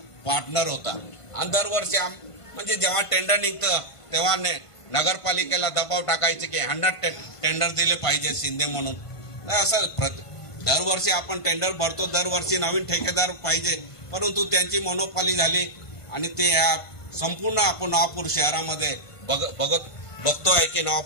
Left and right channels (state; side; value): late; right; 1.5 ms